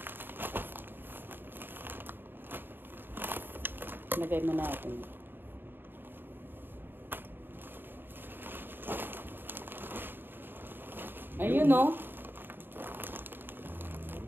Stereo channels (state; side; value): late; left; 0.096 ms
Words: Lagay mo natin. Ayun oh.